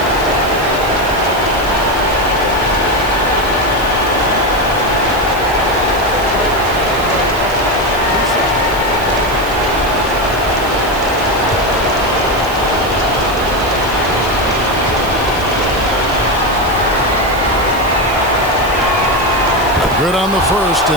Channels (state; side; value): noise; right; hiss, 15 dB below the sound